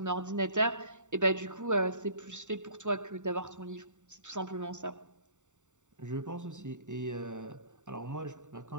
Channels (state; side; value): late; left; 0.85 ms